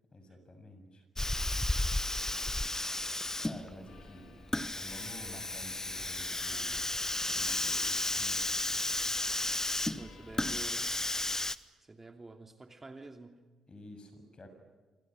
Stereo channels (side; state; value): both; normal; correlation 0.55